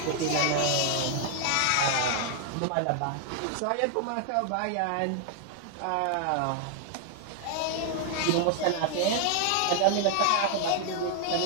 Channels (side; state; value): both; different; correlation 0.00